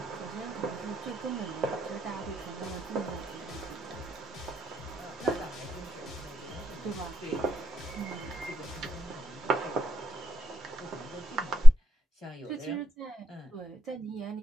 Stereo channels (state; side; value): normal; both; correlation 0.87